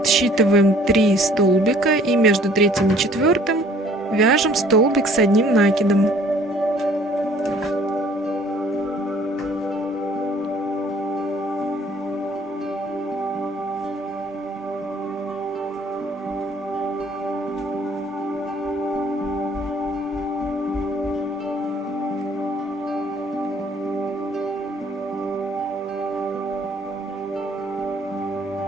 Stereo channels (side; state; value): both; normal; correlation 0.56